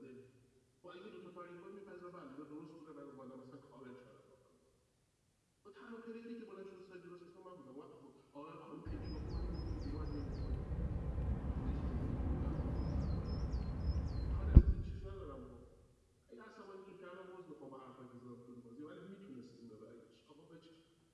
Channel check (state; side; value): identical; both; correlation 1.00